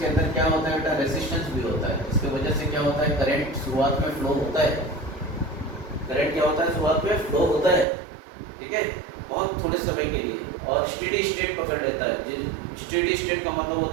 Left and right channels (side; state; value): left; drops out; at 7.9 s